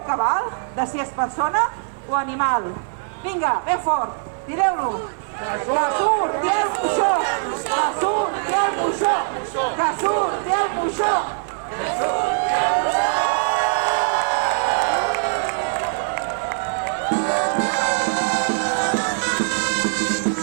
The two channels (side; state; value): left; silent; 57 dB below the other